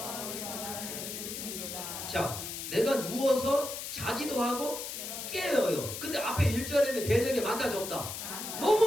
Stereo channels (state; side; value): noise; left; hiss, 7 dB below the sound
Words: 자, 내가 누워서 자기도 하고 깨어요. 근데 앞에 1절에는 대적이 많다 적다?